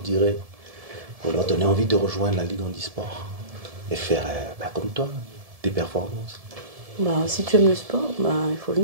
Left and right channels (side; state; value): left; late; 1.7 ms